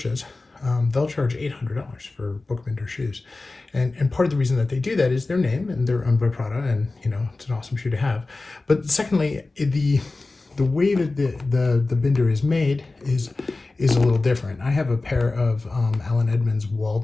they'll charge $800 for book binder shoes. And part of the reason that they do that is their name, and they're owned by Prada, and it's an awesome shoe to have. But secondly, the way that the binder is made is a little different. I have a pair of Allen Edmonds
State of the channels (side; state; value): right; quieter; 3.4 dB